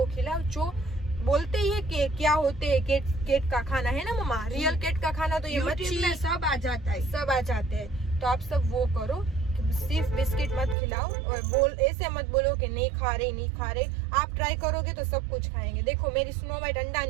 खिलाओ। जो बोलते ही है कि क्या होते है केट का खाना, है ना मम्मा, रियल केट का खाना तो ये मच्छी में सब आ जाता है, सब आ जाते हैं। तो आप सब वो करो, सिर्फ बिस्किट मत खिलाओ। और ऐसे मत बोलो कि नहीं खा रहे। आप ट्राई करोगे तो सब कुछ खाएंगे। देखो मेरी स्नो वाइट अंडा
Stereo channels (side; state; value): left; drops out; at 10.8 s